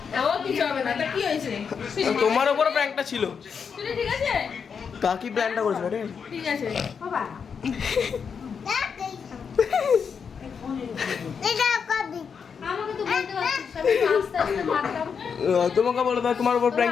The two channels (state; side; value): quieter; right; 6.4 dB